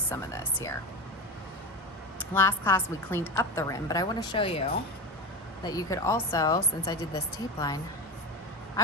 some of this here. Last class we cleaned up the rim, but I wanna show you that you could also, since I did this tape line, I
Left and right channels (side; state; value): both; normal; correlation 0.22